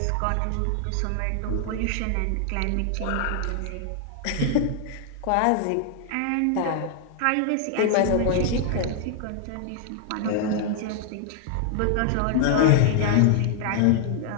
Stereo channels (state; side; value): different; both; correlation 0.00